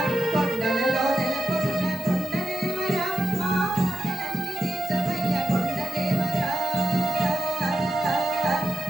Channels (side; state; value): both; normal; correlation 0.90